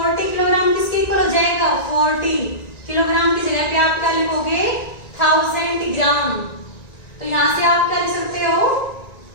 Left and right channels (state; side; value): late; right; 1.9 ms